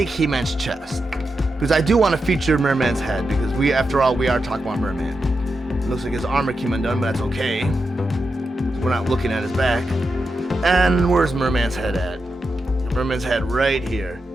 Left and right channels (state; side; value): normal; both; correlation 0.88